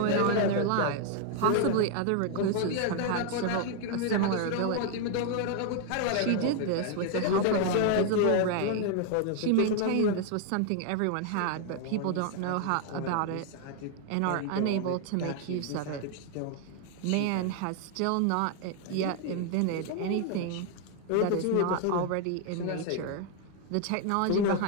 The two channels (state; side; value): different; both; correlation 0.00